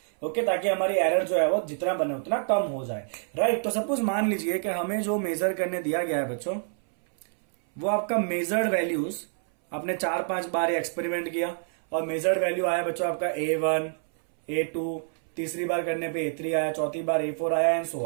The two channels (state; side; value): silent; left; 60 dB below the other